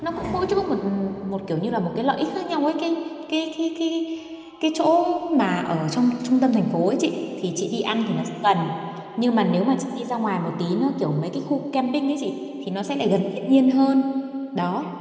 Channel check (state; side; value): identical; both; correlation 1.00